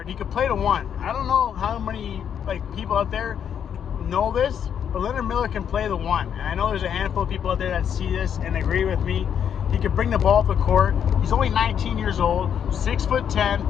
He could play the 1. I don't know how many, people out there know this, but Leonard Miller can play the 1. And I know there's a handful of people out there that see this and agree with me. He can bring the ball up the court. He's only 19 years old,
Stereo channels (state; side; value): quieter; right; 8.4 dB